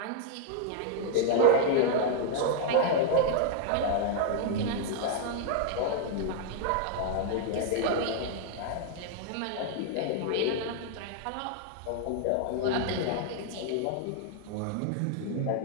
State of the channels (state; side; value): different; both; correlation -0.01